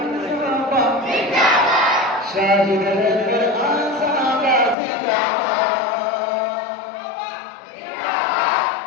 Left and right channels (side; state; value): right; drops out; at 4.8 s